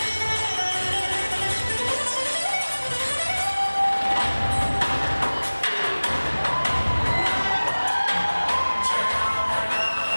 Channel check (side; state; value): both; inverted; correlation -1.00